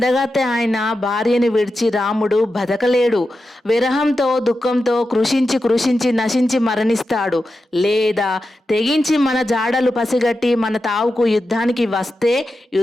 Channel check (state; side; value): normal; both; correlation 0.90